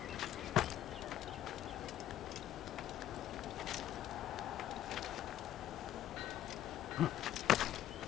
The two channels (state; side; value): quieter; right; 12.2 dB